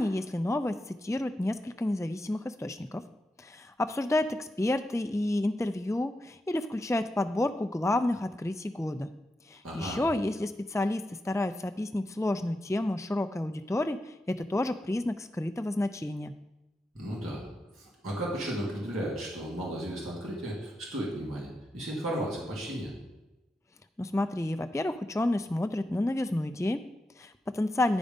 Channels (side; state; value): both; normal; correlation 0.87